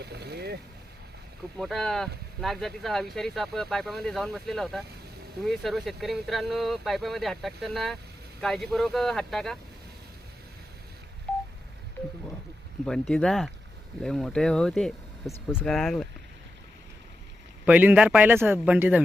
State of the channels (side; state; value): both; normal; correlation 0.89